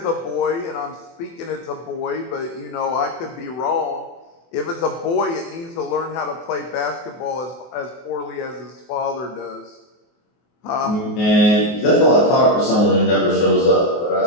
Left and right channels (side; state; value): right; late; 24 ms